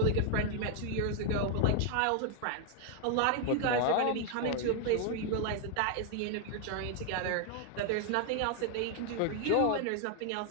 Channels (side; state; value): both; different; correlation 0.00